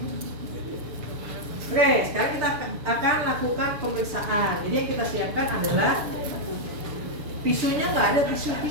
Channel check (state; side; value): late; left; 6.9 ms